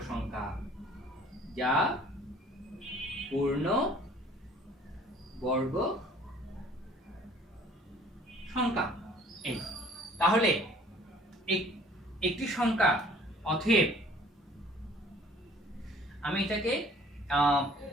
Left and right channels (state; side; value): normal; both; correlation 0.53